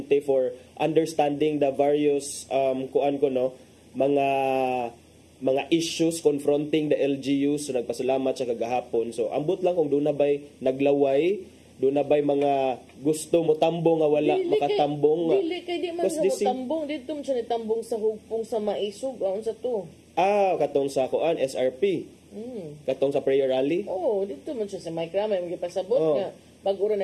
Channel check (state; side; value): identical; both; correlation 1.00